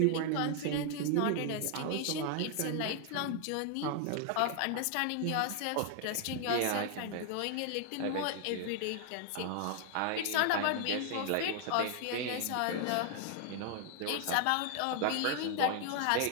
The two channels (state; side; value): different; both; correlation 0.00